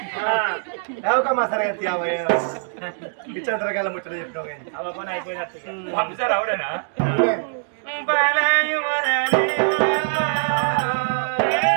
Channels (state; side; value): silent; left; digital silence